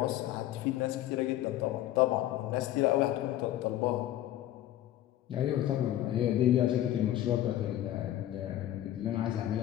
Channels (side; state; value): right; quieter; 13.2 dB